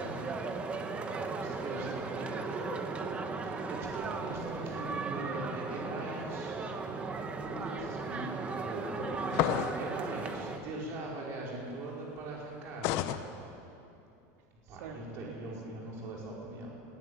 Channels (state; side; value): normal; both; correlation 0.41